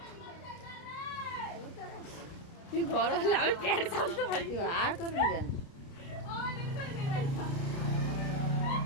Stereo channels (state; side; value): late; right; 30 ms